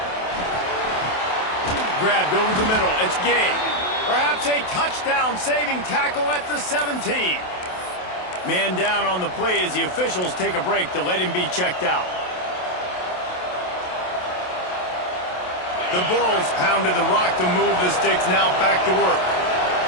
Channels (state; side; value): late; right; 27 ms